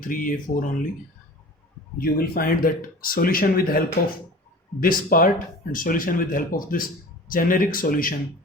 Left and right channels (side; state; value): both; normal; correlation 0.39